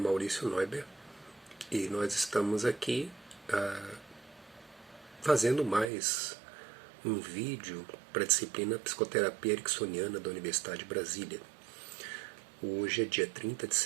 Neuber e nós estamos aqui fazendo mais um vídeo para a disciplina Psicoterapia Ericksoniana da Universidade de Brasília. Hoje é dia 30 de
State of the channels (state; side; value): drops out; left; at 5.9 s